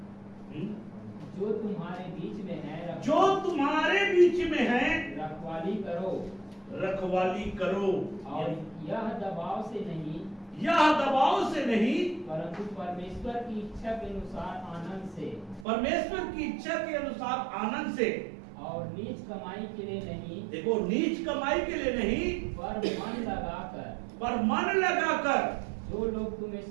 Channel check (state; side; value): drops out; left; at 15.7 s